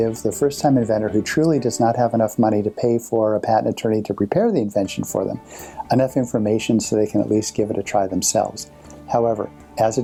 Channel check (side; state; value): both; identical; correlation 1.00